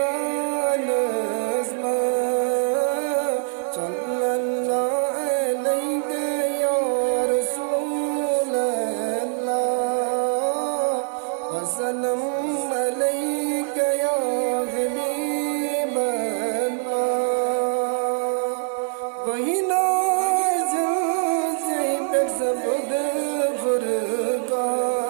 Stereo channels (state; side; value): silent; left; digital silence